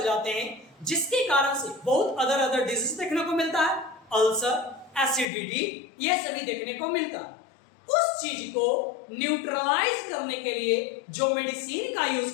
जाते हैं, जिसके कारण से बहुत अदर डिजीज देखने को मिलता है, अल्सर, एसिडिटी, ये सभी देखने को मिलता है। उस चीज को न्यूट्रलाइज करने के लिए जो मेडिसिन का यूज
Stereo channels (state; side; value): drops out; right; at 5.2 s